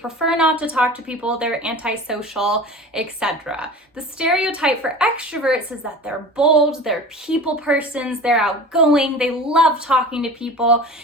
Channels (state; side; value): normal; both; correlation 0.37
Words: not to talk to people, they're antisocial, etc. The stereotype for extroverts is that they're bold, they're people persons, they're outgoing, they love talking to people,